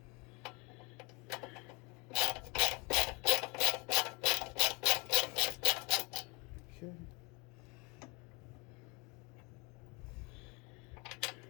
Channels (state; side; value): quieter; right; 28.9 dB